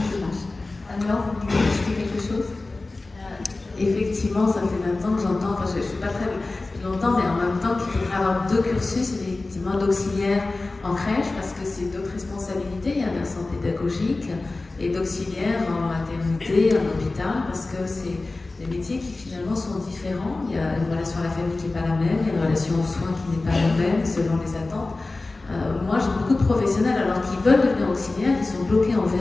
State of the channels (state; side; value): quieter; right; 3.3 dB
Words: violence. Alors, vous voulez ajouter quelque chose? Effectivement, ça fait 20 ans que j'entends, enfin je ne suis pas très longtemps, mais en même temps qu'il faudrait avoir 2 cursus, effectivement, d'auxiliaire en crèche, parce que c'est d'autres responsabilités, il y a un versant pédagogique, et d'auxiliaire en maternité, en hôpital, parce que c'est des métiers qui finalement sont différents. Il y a une relation à la famille qui n'est pas la même, il y a une relation aux soins qui n'est pas la même, selon les attentes. Moi, j'ai beaucoup de professionnels, alors qu'ils veulent devenir auxiliaires, qui sont bloqués en